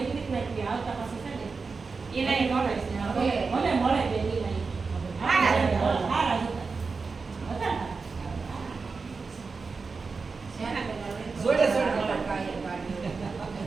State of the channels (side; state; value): left; quieter; 4.6 dB